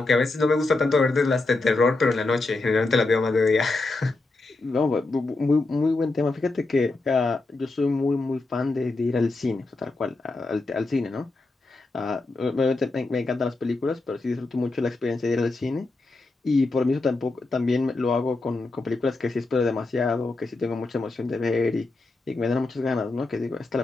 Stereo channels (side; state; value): right; quieter; 3.3 dB